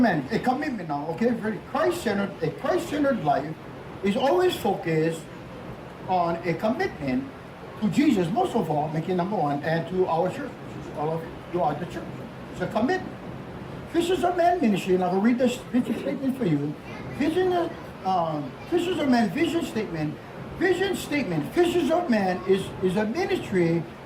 a commitment now, okay? Very Christ-centered, a Christ-centered life is always focused on a commitment to Jesus, most of all, making number one, and to our church, which is all of you are the church. It's a commitment. Fishers of men ministry, and I will read this vision statement for you. Fishers of men vision statement. Vision statement. Fishers of men is a ministry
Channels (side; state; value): both; identical; correlation 1.00